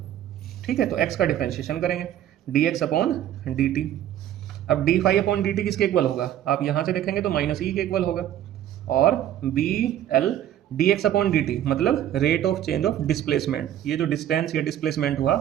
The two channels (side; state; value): left; quieter; 11.5 dB